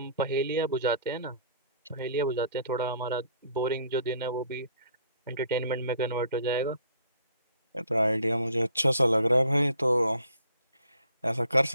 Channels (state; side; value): inverted; both; correlation -0.58